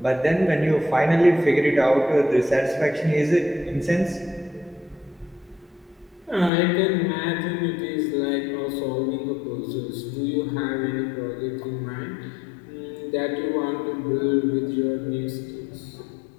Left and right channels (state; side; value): drops out; right; at 6.5 s